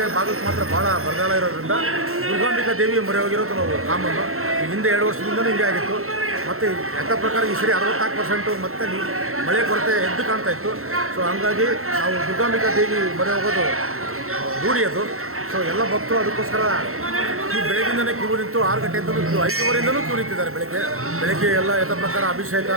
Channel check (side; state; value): left; late; 0.63 ms